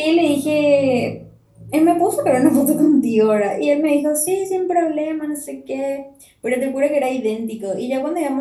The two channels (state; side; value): identical; both; correlation 1.00